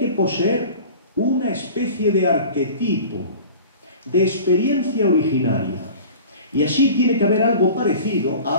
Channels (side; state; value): both; inverted; correlation -0.40